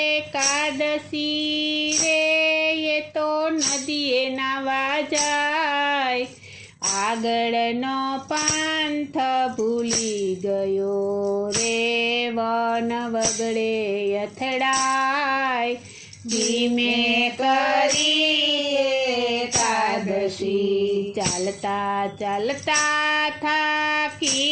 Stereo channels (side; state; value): both; identical; correlation 1.00